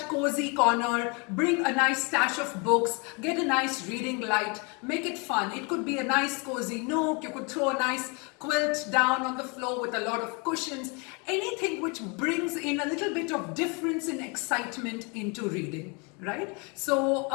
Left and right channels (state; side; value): quieter; right; 32.0 dB